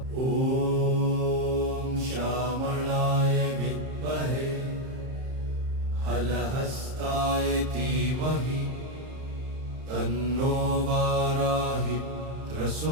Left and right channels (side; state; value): left; late; 31 ms